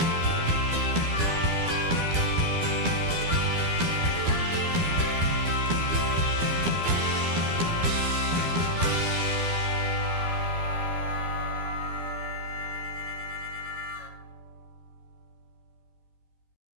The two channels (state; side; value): late; left; 12 ms